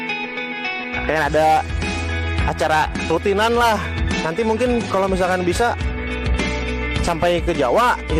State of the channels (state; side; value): identical; both; correlation 1.00